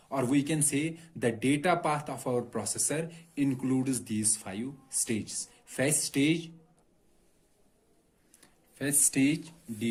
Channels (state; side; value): identical; both; correlation 1.00